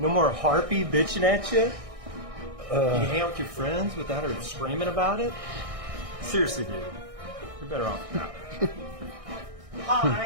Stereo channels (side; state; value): left; late; 1.6 ms